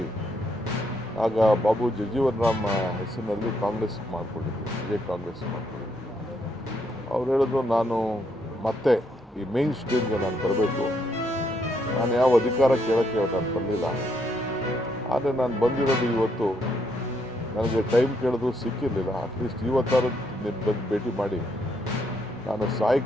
ಆಗ ಬಾಬು ಜಗಜೀವನ್ ರಾಮ್ ಹೆಸರಿನಲ್ಲಿ ಕಾಂಗ್ರೆಸ್ ಮಾಡಿಕೊಂಡಿದ್ದೆ, ವಿಜಯ್ ಕಾಂಗ್ರೆಸ್ ಮಾಡಿಕೊಂಡಿದ್ದೆ. ಅವ್ರು ಹೇಳಿದ್ರು ನಾನು ಮತ್ತೆ ಈ ಮೇನ್ ಸ್ಟ್ರೀಮ್ಗೆ ನಾನು ಬರಬೇಕು. ನಾನು ಯಾವ ಅಧಿಕಾರ ಕೇಳೋಕ್ಕೆ ನಾನು ಬರಲಿಲ್ಲ. ಆದರೆ ನಾನು ಬಂದಿರೋದು ಇವತ್ತು ನನಗೆ ಟೈಮ್ ಕೇಳಿದ್ರು ಸಿಕ್ಕಿರಲಿಲ್ಲ. ಅಟ್ಲೀಸ್ಟ್ ಇವತ್ತಾರು ನೀನು ಬಂದು ಭೇಟಿ ಮಾಡಿ ನಾನು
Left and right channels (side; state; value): both; normal; correlation 0.75